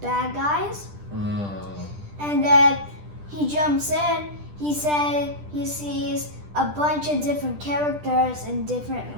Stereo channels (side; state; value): left; late; 10 ms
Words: guys. And then he jumps in. He said he sees a bunch of different characters in different